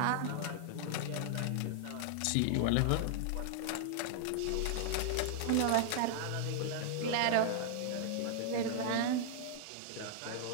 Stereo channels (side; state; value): both; different; correlation -0.01